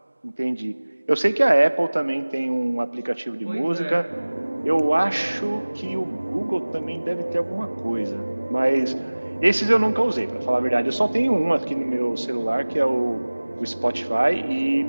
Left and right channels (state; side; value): inverted; both; correlation -1.00